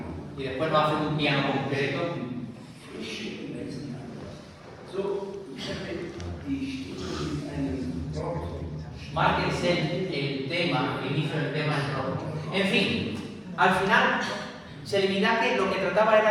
y después nos hacen un piano concreto. Márquense el tema, el inicio del tema en rojo. En fin, al final, Celibidache lo que trataba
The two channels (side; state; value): both; identical; correlation 1.00